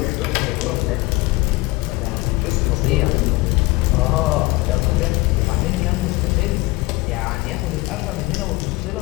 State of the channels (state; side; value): quieter; right; 21.3 dB